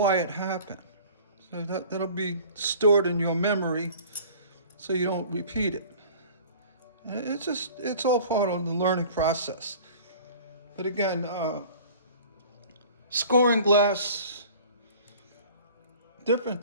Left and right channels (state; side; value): inverted; both; correlation -0.45